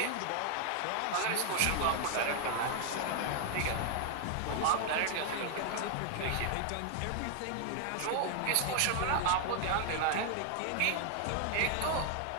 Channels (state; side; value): different; both; correlation 0.00